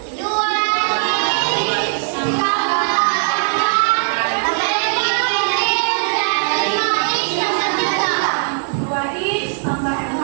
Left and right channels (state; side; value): silent; left; 60 dB below the other